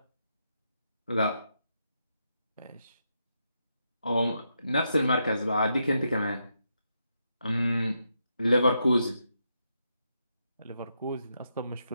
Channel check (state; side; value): inverted; both; correlation -0.82